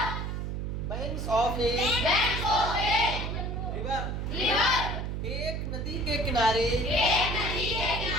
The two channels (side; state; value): right; noise; hum, 3 dB below the sound